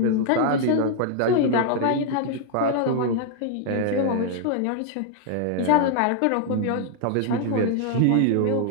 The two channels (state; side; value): different; both; correlation -0.01